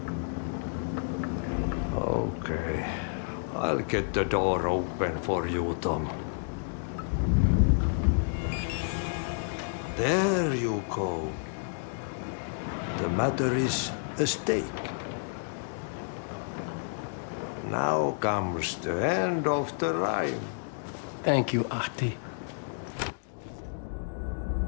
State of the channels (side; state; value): right; silent; digital silence